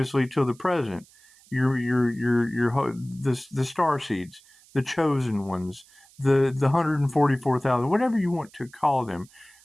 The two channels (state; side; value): noise; right; hiss, 27 dB below the sound